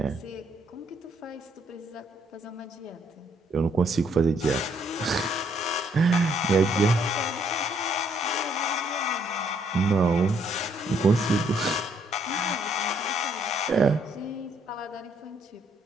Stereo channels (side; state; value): both; normal; correlation 0.69